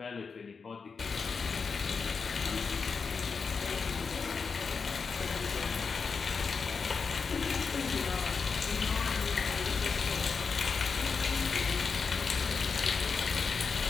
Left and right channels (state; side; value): quieter; right; 5.3 dB